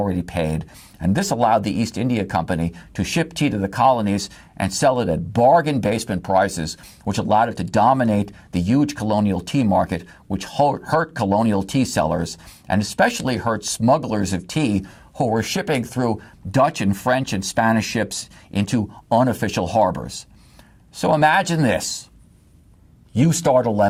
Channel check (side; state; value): both; identical; correlation 1.00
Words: paid, and this allowed the East India Company to ship tea to the colonies and sell it at bargain basement prices, which allowed it to dominate the huge colonial tea market, which hurt colonial tea sellers and especially hurt smugglers of tea who were shipping through Dutch and French and Spanish ships into unofficial harbors. So imagine this. You start a